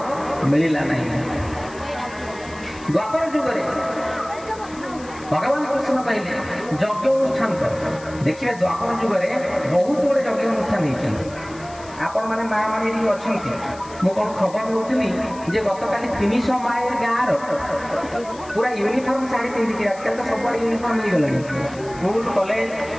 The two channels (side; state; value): left; noise; hiss, 21 dB below the sound